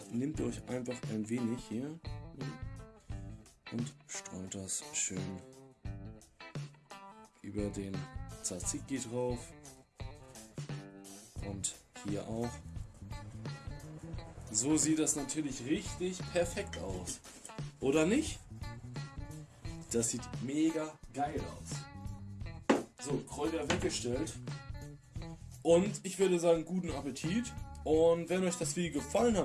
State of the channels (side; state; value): both; identical; correlation 1.00